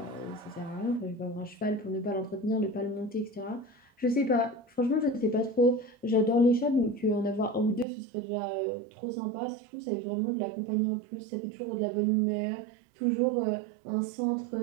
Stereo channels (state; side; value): drops out; left; at 7.9 s